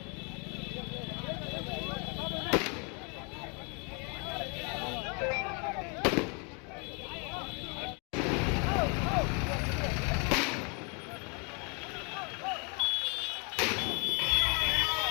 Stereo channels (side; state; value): right; quieter; 34.7 dB